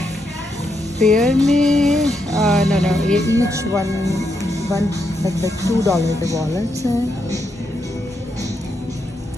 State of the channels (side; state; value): both; normal; correlation 0.81